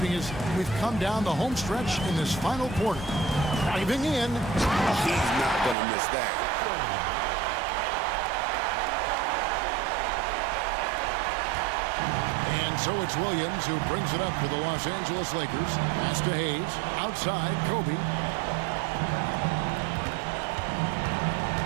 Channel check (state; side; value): drops out; left; at 5.8 s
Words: as we've come down the home stretch in this final quarter. Driving in. He's not going to miss that. And so it's Williams who brings it up for the Los Angeles Lakers. Pass to Hayes. Outside, Kobe.